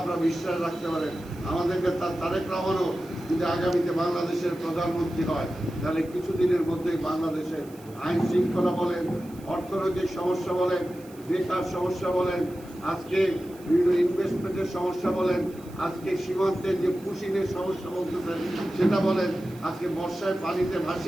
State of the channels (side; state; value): right; noise; hiss, 25 dB below the sound